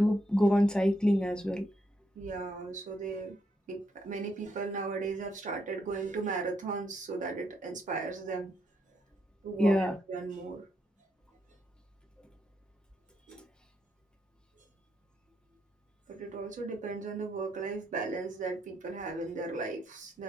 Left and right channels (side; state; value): both; normal; correlation 0.78